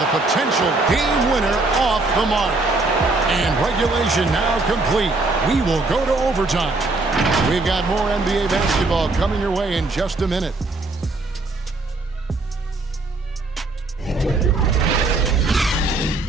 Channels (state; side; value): quieter; left; 3.2 dB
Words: The potential game winner off the mark. And regulation now complete. We will go to overtime. We've got more NBA basketball coming your way in just a minute.